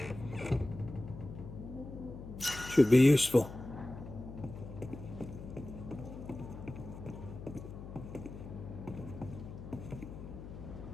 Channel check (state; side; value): noise; left; hum, 12 dB below the sound